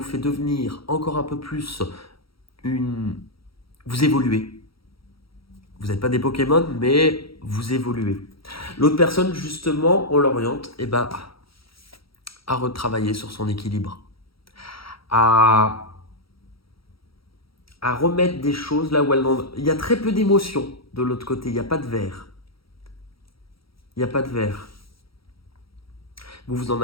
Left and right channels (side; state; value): right; late; 0.75 ms